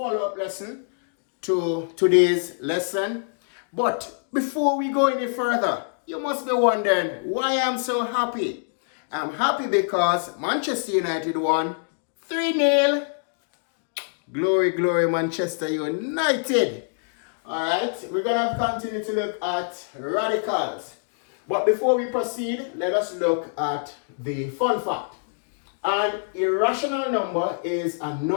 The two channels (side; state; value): right; silent; digital silence